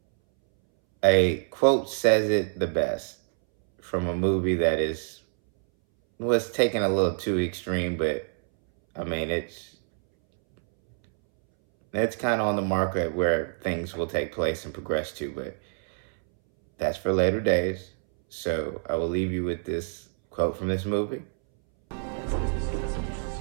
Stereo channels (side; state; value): left; silent; 61 dB below the other